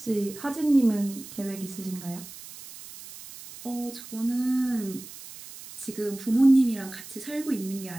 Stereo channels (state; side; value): noise; right; hiss, 15 dB below the sound